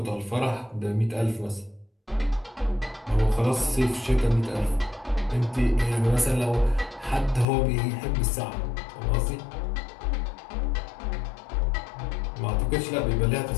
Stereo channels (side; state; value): right; drops out; at 7.5 s